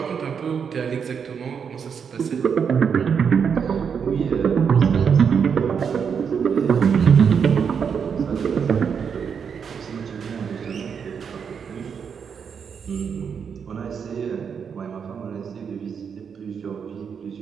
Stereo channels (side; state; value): left; quieter; 6.8 dB